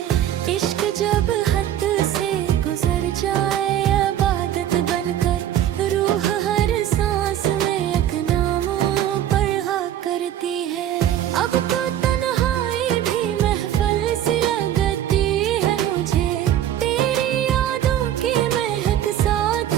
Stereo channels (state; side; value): quieter; left; 11.3 dB